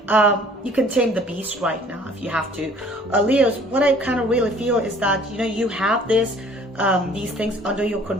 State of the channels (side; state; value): both; normal; correlation 0.54